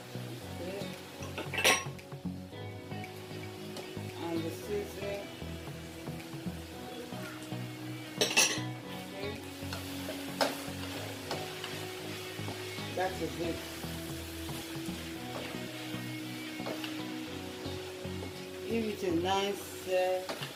And the seasoning. Okay. That is it. Give it a nice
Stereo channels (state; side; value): identical; both; correlation 1.00